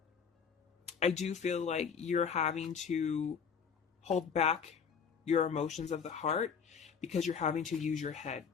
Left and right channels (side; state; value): right; quieter; 6.6 dB